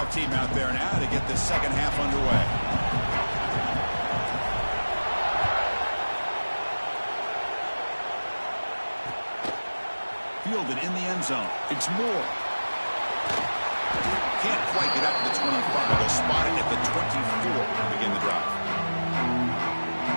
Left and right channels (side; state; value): both; inverted; correlation -1.00